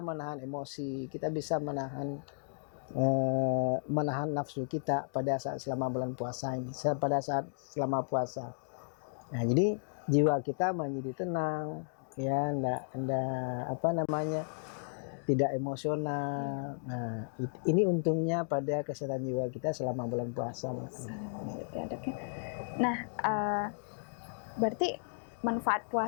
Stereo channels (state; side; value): silent; right; digital silence